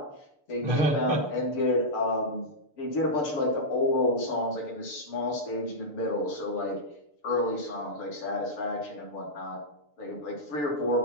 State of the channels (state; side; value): late; right; 6.8 ms